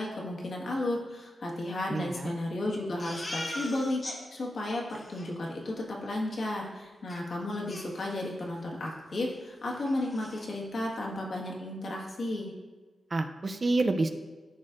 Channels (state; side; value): normal; both; correlation 0.89